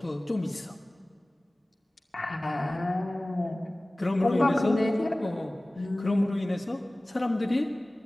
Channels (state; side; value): normal; both; correlation 0.98